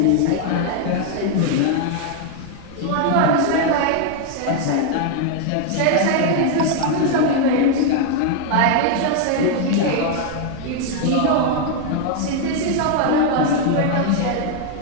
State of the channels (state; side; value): different; both; correlation 0.00